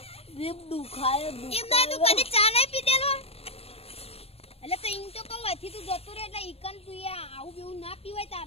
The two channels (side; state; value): right; late; 0.29 ms